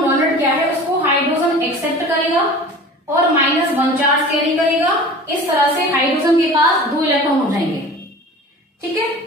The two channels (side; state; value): both; normal; correlation 0.40